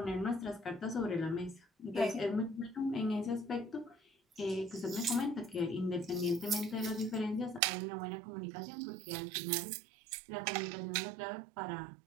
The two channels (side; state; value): left; drops out; at 7.6 s